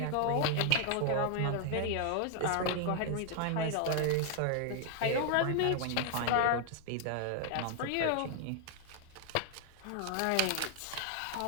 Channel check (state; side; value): different; both; correlation 0.00